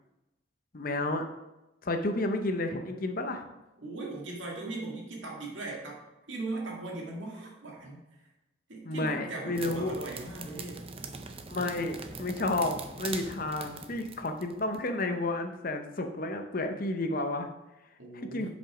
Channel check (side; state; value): both; normal; correlation 0.27